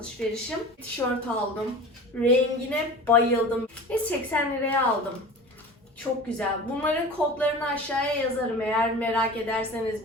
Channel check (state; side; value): normal; both; correlation 0.37